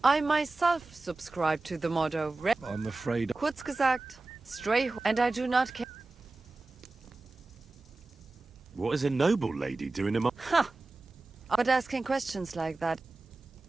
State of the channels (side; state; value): left; quieter; 3.3 dB